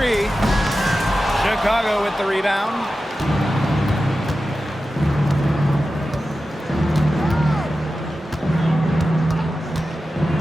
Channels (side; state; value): both; normal; correlation 0.93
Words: Chicago with the rebound.